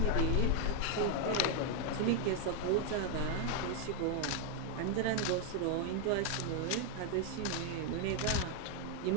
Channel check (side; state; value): both; different; correlation 0.01